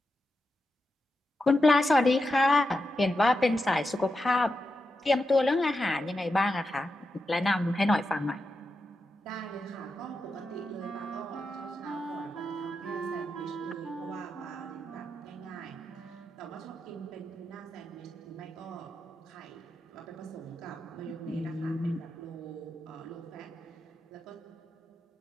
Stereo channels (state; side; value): normal; both; correlation 0.88